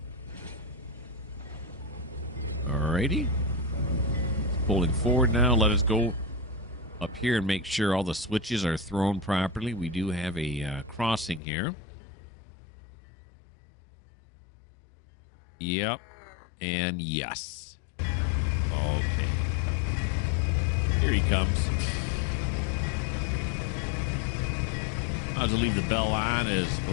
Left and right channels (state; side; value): drops out; right; at 11.4 s